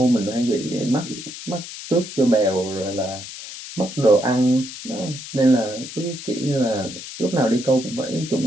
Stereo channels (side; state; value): left; noise; hiss, 11 dB below the sound